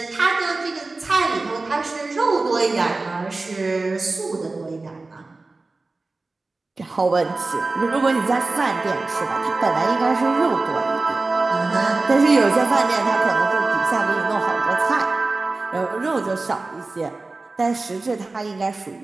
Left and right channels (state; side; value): quieter; left; 3.4 dB